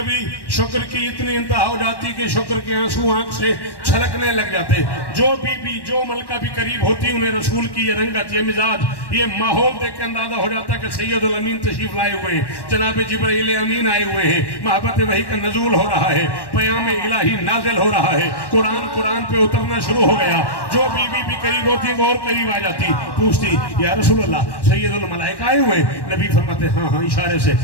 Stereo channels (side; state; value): right; late; 1.1 ms